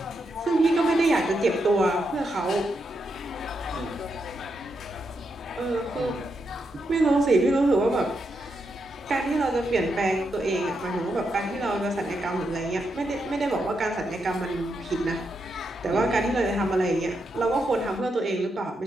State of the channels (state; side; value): normal; both; correlation 0.83